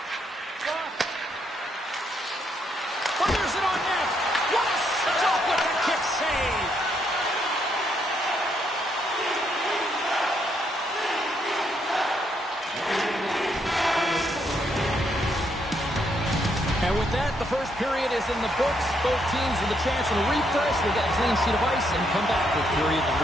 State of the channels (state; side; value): normal; both; correlation 0.75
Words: Fires it on net. What a stop with the kick save. And with that, the first period is in the books. Both teams with a chance at a refresh. We'll get a clean sheet of ice and come back with period